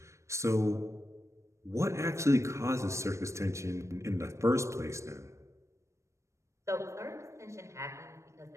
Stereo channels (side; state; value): left; late; 0.14 ms